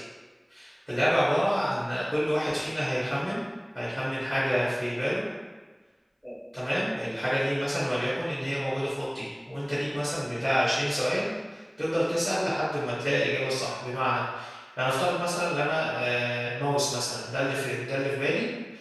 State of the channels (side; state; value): both; identical; correlation 1.00